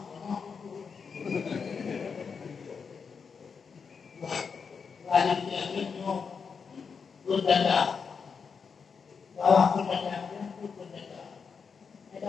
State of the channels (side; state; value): right; quieter; 5.8 dB